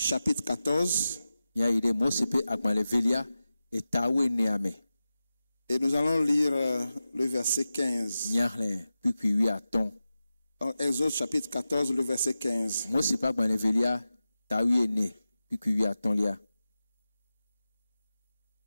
14. Et nous allons lire le verset 15. Donc, Exode chapitre 14, le verset 15.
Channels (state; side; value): inverted; both; correlation -0.93